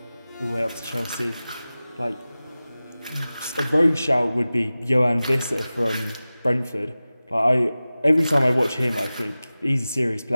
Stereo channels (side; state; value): both; inverted; correlation -0.97